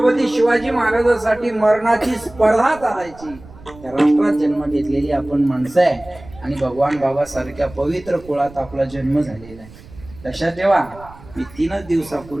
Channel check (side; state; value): right; noise; rumble, 20 dB below the sound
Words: शिवाजी महाराजांसाठी मरणाची स्पर्धा चालायची. त्या राष्ट्रात जन्म घेतलेली आपण माणसं आहे आणि भगवान बाबा सारख्या पवित्र कुळात आपला जन्म झालेला आहे. लक्षात ठेवा, मी 3